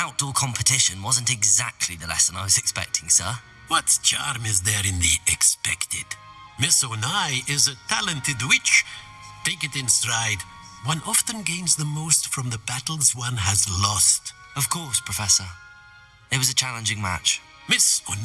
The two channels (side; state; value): both; identical; correlation 1.00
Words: competition wasn't exactly the lesson I was expecting, sir. What charm is there in the expected? Miss Onai is a talented witch. Take it in stride. One often gains the most from the battles one has lost. Of course, Professor. It was a challenging match. Miss